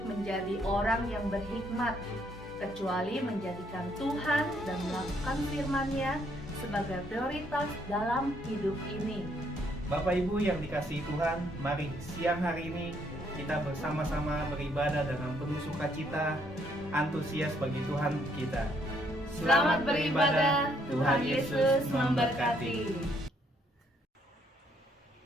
menjadi orang yang berhikmat, kecuali menjadikan Tuhan dan melakukan firman-Nya sebagai prioritas dalam hidup ini. Bapak Ibu yang dikasihi Tuhan, mari siang hari ini kita bersama-sama beribadah dengan penuh sukacita, antusias bagi Tuhan kita. Selamat beribadah, Tuhan Yesus memberkati.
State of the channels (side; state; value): both; normal; correlation 0.70